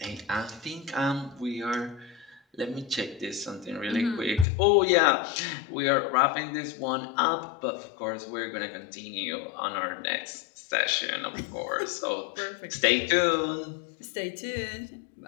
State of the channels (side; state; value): right; drops out; at 4.5 s